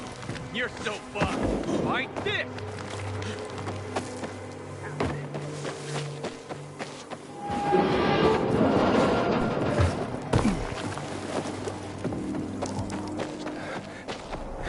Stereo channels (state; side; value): identical; both; correlation 1.00